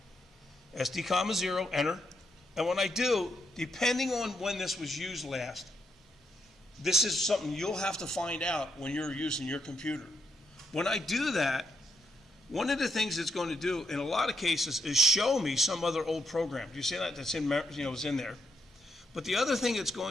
SD, comma, 0, enter. And when I do, depending on when this was used last, this is something you'll have to find out when you're using your computer. When I do that, one of the things it's going to do in a lot of cases is show me some other old program. Do you see that? That's in, is in there. But the other thing it's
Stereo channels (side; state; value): both; normal; correlation 0.79